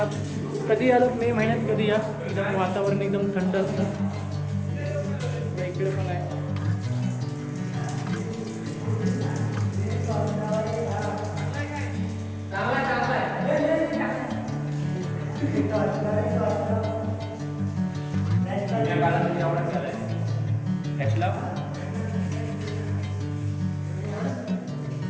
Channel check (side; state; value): both; identical; correlation 1.00